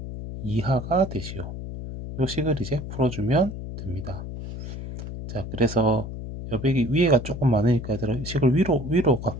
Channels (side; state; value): left; noise; hum, 8 dB below the sound